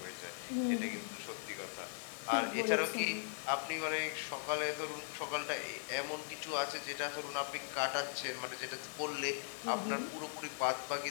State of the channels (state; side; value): silent; right; digital silence